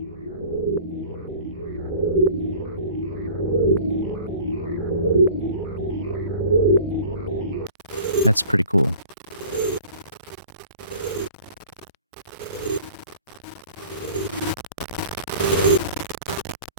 That's pretty cool.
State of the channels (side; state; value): both; inverted; correlation -0.43